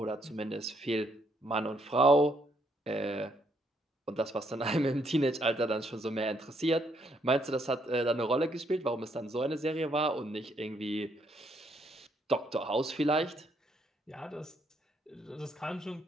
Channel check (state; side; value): normal; both; correlation 0.72